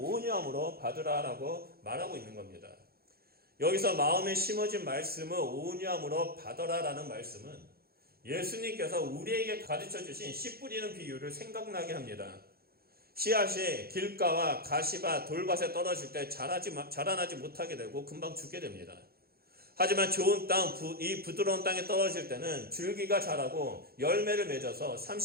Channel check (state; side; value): late; left; 0.44 ms